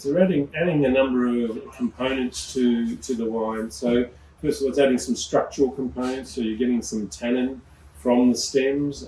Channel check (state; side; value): identical; both; correlation 1.00